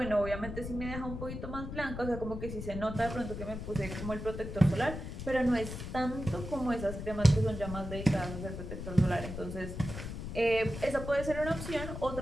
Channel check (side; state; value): left; noise; rumble, 7 dB below the sound